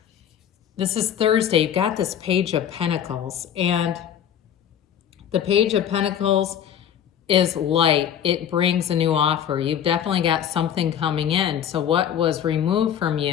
this is Thursday, you've got this Page of Pentacles, and the Page of Pentacles is light. It brings a new offer. You've definitely got something coming in. So what was removed from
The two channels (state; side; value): quieter; right; 9.4 dB